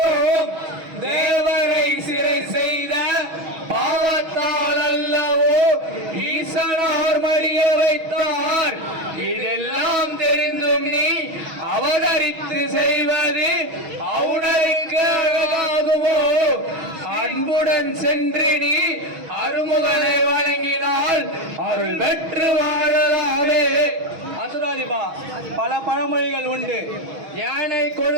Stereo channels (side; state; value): left; late; 6.2 ms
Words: தேவரை சிறை செய்த பாவத்தால் அல்லவோ ஈசனார் மடிய வைத்தார். இதெல்லாம் தெரிந்தும் நீ அவதரித்து செய்வது அவுணருக்கு அழகாகுமோ? அன்புடன் சென்று நீ அருமுகனை வழங்கினால் அருள் பெற்று வாழலாமே. அசுராதிபா, பல பழமொழிகள் உண்டு. யானை